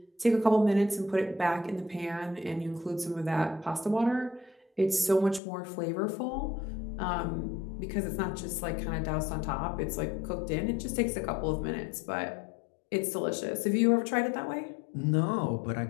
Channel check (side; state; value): right; drops out; at 5.4 s